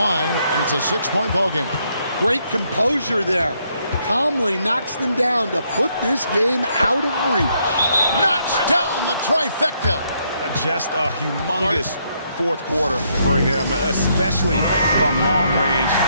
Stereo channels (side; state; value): both; inverted; correlation -0.74